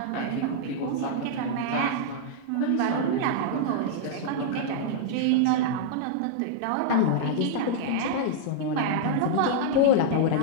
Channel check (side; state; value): both; different; correlation -0.02